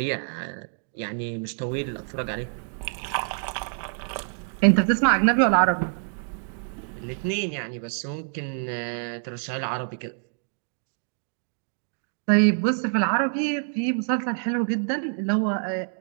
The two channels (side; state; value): left; silent; digital silence